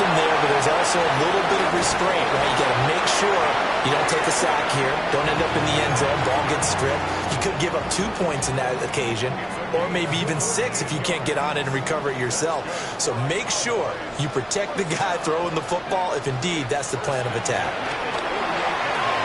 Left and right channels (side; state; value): both; identical; correlation 1.00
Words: there, but there's also a little bit of restraint, right? You got to make sure you don't take a sack here. Don't end up in the end zone. Ball gets stripped. You could give up 2 points in that occasion, or maybe even 6 if you can't get on it and recover it yourself. So make sure you protect the guy throwing the football if indeed that's the plan of attack.